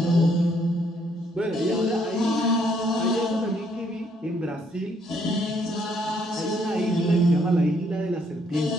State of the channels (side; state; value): both; normal; correlation 0.69